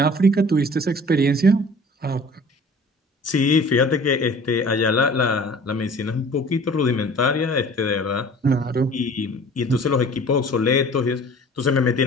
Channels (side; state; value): both; normal; correlation 0.46